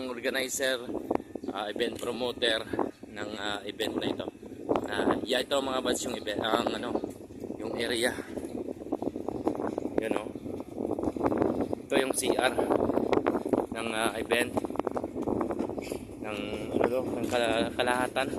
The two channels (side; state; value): both; identical; correlation 1.00